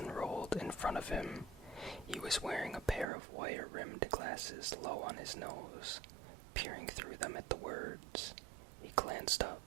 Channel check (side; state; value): left; drops out; at 3.1 s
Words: in front of him. He was wearing a pair of wire-rimmed glasses low on his nose, peering through them at the words. He glanced